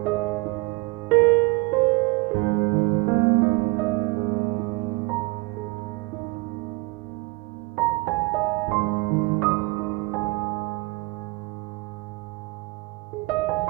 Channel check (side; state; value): left; quieter; 24.2 dB